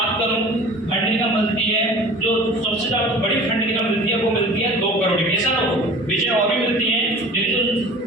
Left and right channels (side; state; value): both; normal; correlation 0.42